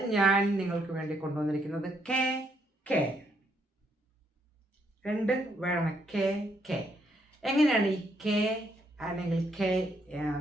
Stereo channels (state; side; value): normal; both; correlation 0.74